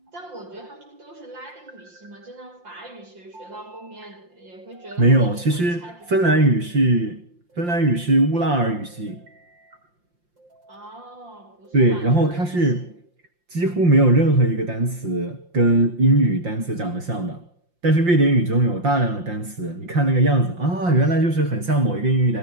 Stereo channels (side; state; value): left; late; 5.7 ms